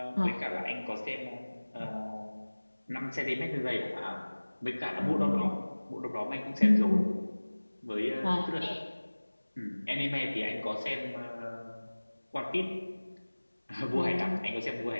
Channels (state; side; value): inverted; both; correlation -1.00